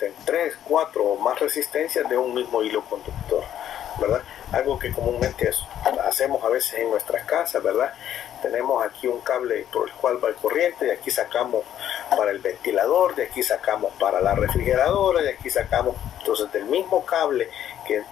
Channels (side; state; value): right; quieter; 10.8 dB